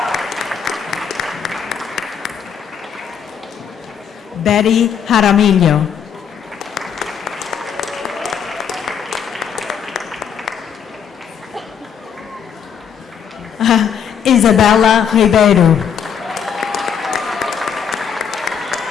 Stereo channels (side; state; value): right; quieter; 7.6 dB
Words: Betty Jaramillo. Isabella Ribeiro.